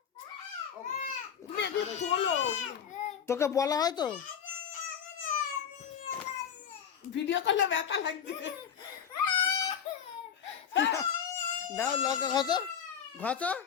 তুমি একটু তোলো। তোকে বলা হয় তো। ভিডিও করলে ব্যথা লাগবে। দাও লঙ্কা ঘষো ঘষো।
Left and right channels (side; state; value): right; quieter; 8.0 dB